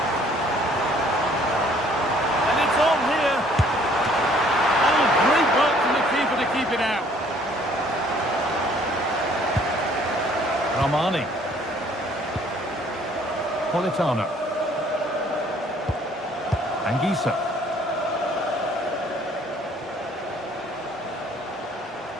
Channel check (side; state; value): both; normal; correlation 0.59